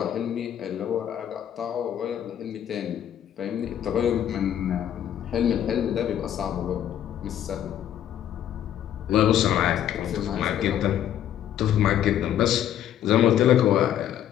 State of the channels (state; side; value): quieter; right; 10.6 dB